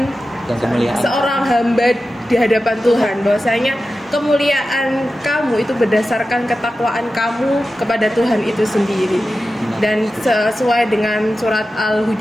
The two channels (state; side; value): normal; both; correlation 0.93